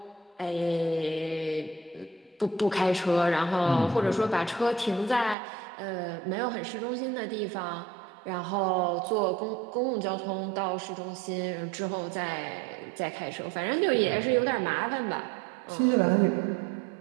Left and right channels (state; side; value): drops out; left; at 5.4 s